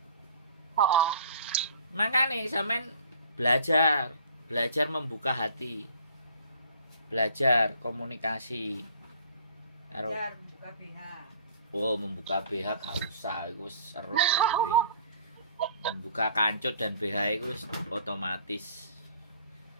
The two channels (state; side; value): inverted; both; correlation -0.52